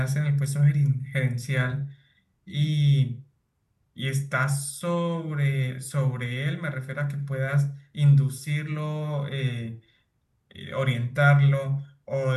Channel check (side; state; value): both; identical; correlation 1.00